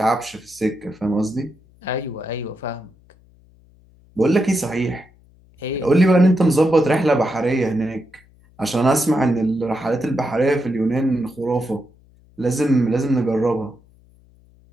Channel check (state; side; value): noise; left; hum, 29 dB below the sound